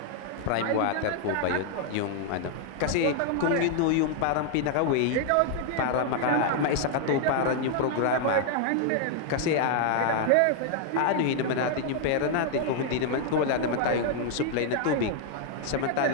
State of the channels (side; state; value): both; different; correlation 0.00